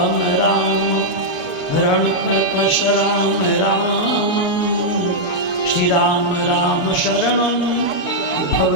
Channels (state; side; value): late; right; 7.0 ms